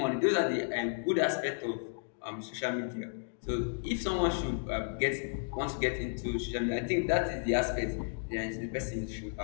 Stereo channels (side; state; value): right; silent; digital silence